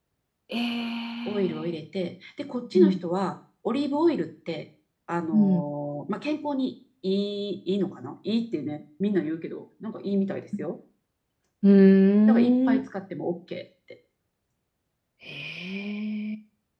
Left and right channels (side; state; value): both; identical; correlation 1.00